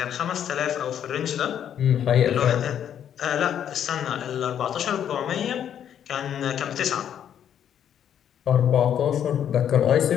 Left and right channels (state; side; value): quieter; right; 9.5 dB